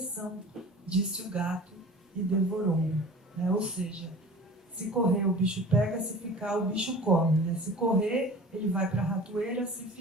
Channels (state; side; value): normal; both; correlation 0.41